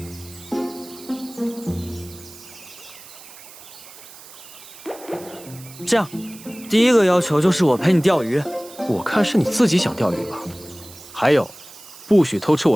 这样，第一个要求就是我陪你钓鱼。我看是你自己想钓鱼吧。还有，不许偷吃我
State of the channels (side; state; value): right; noise; hiss, 18 dB below the sound